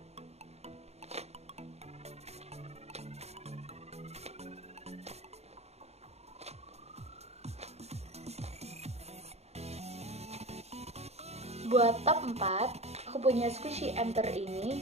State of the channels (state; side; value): late; left; 0.31 ms